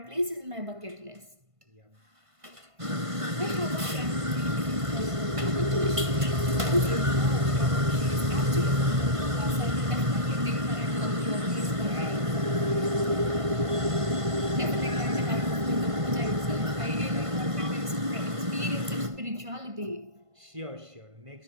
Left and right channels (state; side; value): late; left; 1.5 ms